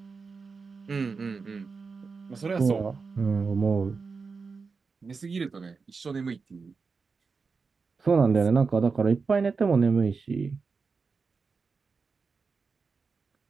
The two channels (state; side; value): quieter; left; 4.8 dB